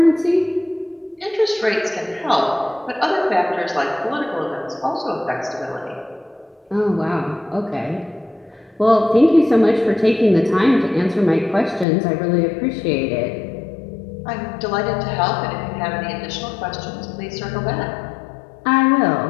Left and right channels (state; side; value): drops out; right; at 11.9 s